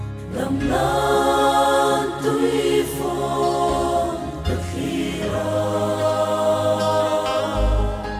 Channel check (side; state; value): both; identical; correlation 1.00